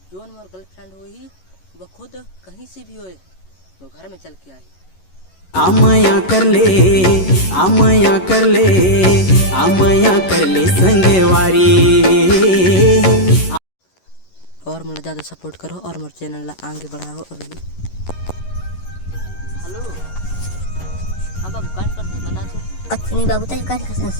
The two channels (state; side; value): late; right; 11 ms